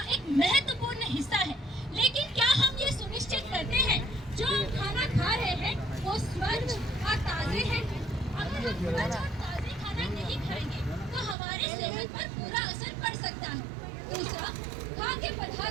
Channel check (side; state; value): left; drops out; at 11.4 s